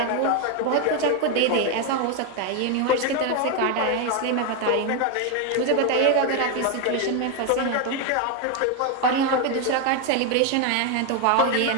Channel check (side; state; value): both; different; correlation 0.01